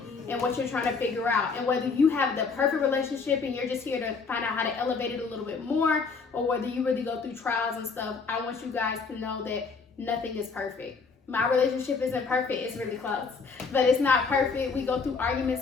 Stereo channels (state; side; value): quieter; right; 4.9 dB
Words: in what you're trying to figure out. And whether you have the perfect relationship and you're just here to find out how to elevate it a little bit more, or whether you really go through trials and stuff, I want you guys to know that nothing is perfect. My relationship isn't perfect, it's really close, but it's not perfect. We go through arguments